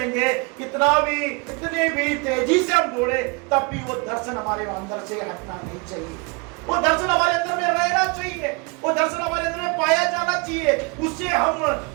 कितने भी तेजी से हम दौड़े, तब भी वो दर्शन हमारे अंदर से हटना नहीं चाहिए। वो दर्शन हमारे अंदर में रहना चाहिए, वो दर्शन हमारे अंदर में पाया जाना चाहिए, उससे हम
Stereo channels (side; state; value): left; quieter; 29.8 dB